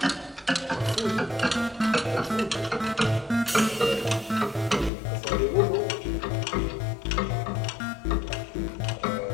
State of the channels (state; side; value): drops out; right; at 4.9 s